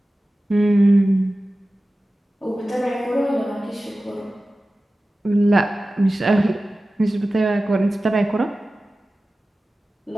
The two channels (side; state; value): both; normal; correlation 0.96